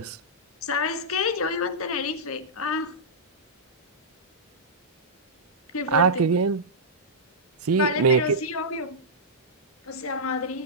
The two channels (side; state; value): both; normal; correlation -0.12